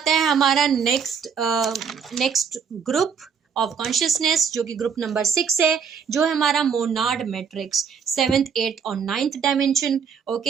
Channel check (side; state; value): left; quieter; 6.6 dB